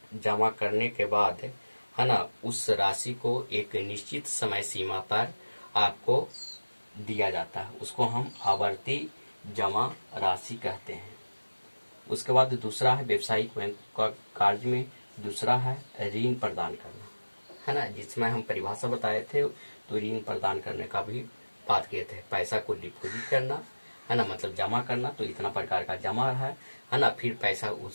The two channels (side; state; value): both; inverted; correlation -1.00